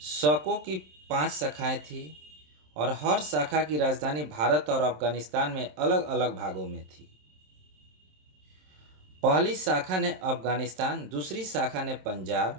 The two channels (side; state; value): left; late; 27 ms